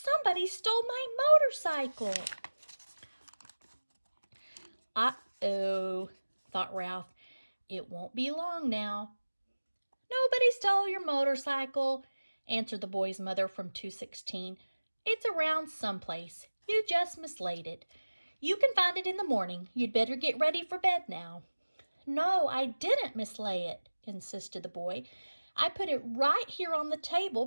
stole my motorcycle!" Uh-oh, thought Ralph. It won't be long now. "Nobody stole your motorcycle," answered the boy's mother from 216. "It's around someplace. You just mislaid it. You can find it in the morning. You'd better get ready for bed now." "No, I didn't mislay it," insisted the boy. "I put it right here on the table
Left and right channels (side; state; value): both; inverted; correlation -1.00